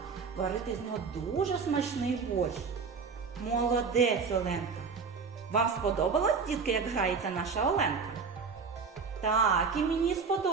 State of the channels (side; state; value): left; quieter; 5.3 dB